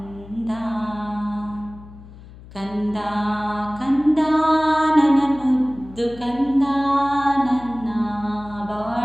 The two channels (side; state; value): left; noise; hum, 19 dB below the sound